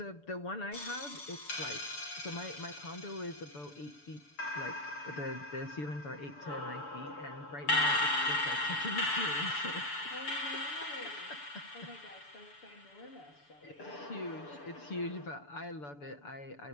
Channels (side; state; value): right; late; 6.9 ms